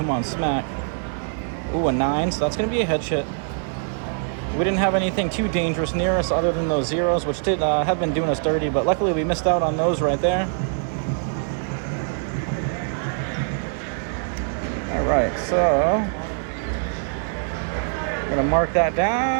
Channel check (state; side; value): silent; left; digital silence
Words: on, smack. Ooh, a 9, so that's going to be a hedge hit. We didn't have anything too dangerous near us other than those zeros, which did have been doing us dirty, but luckily we missed out on those right there. All right, so I'm going to mark that